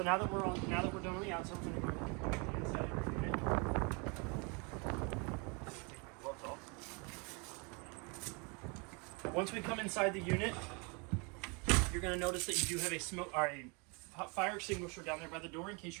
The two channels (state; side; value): quieter; left; 31.9 dB